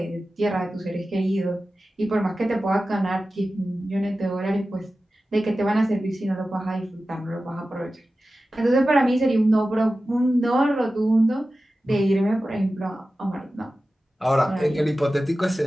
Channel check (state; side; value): normal; both; correlation 0.94